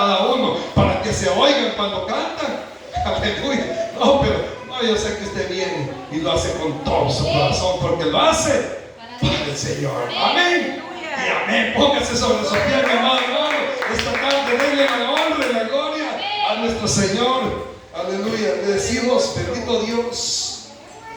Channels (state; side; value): identical; both; correlation 1.00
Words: uno para que se oigan cuando cantan. Aleluya. No, pero no, yo sé que usted viene y lo hace con todo su corazón, porque lo hace para el Señor. Amén. Y amén. Póngase sobre su pie, mi amado hermano. Esta tarde denle la honra y la gloria a nuestro Señor. Aleluya. Le decimos: bendito Dios,